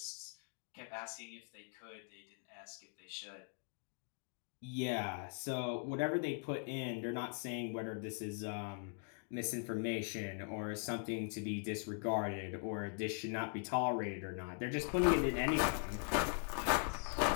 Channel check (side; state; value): right; silent; 50 dB below the other